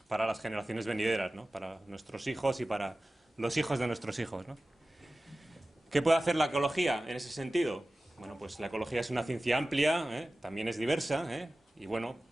para las generaciones venideras, ¿no? Para nuestros hijos y para los hijos de nuestros hijos, ¿no? ¿Qué puede hacer la ecología en ese sentido? Bueno, pues la ecología es una ciencia amplia, también es diversa, y bueno,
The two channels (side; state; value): both; normal; correlation 0.96